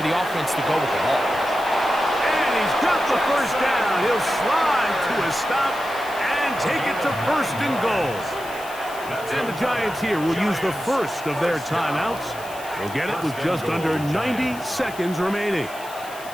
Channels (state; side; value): noise; left; hiss, 17 dB below the sound